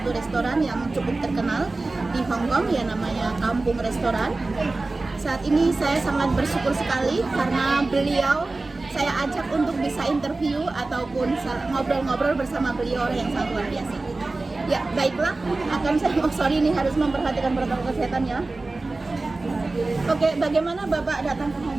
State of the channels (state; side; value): quieter; left; 3.3 dB